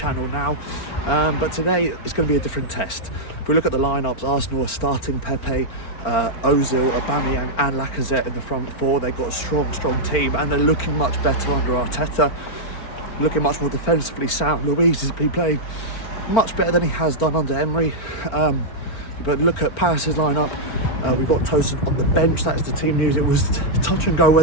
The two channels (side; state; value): right; late; 4.5 ms